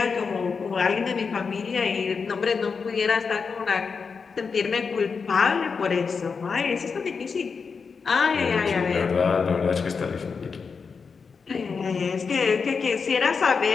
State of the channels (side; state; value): right; quieter; 5.3 dB